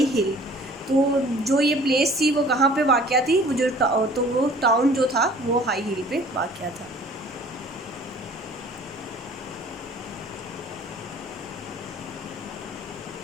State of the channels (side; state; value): both; normal; correlation 0.51